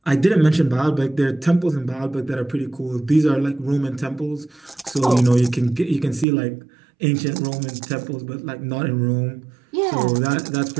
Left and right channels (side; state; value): left; drops out; at 6.2 s